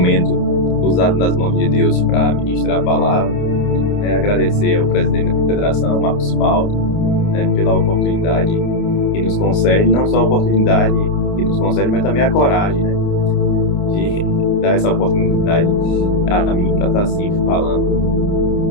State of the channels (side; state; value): right; late; 29 ms